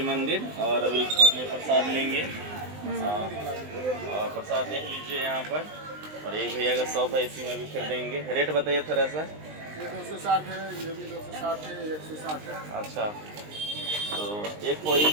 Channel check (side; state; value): left; late; 19 ms